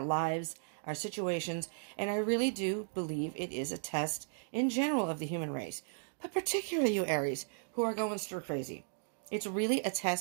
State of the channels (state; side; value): silent; left; digital silence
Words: lives, our situations, and I really do believe it is a test in general of the human race, but particularly you Aries, who are going stir crazy. It's really a